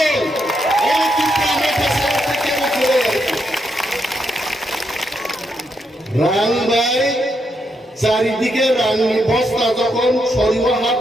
এই টিপ্রামোঠা সবথেকে বড় রাং ভাই চারিদিকে রাংনি বস্তা যখন সরিয়ে হাত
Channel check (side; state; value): both; normal; correlation 0.80